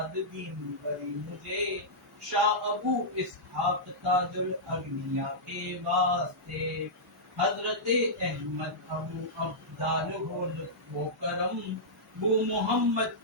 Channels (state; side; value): normal; both; correlation -0.12